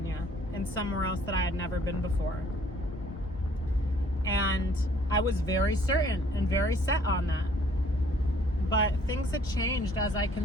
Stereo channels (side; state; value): both; normal; correlation 0.59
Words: and somewhere else that I had never been before. And I was very certain and very set on that. But things had changed as I